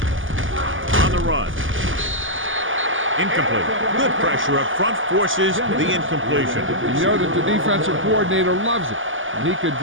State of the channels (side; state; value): left; late; 0.58 ms